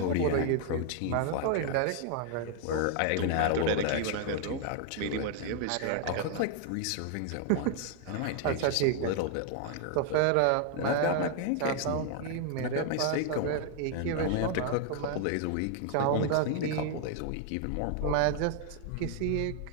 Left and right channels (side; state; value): both; different; correlation 0.00